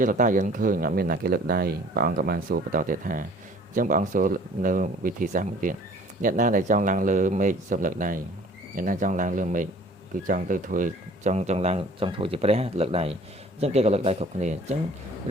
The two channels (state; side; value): normal; both; correlation 0.51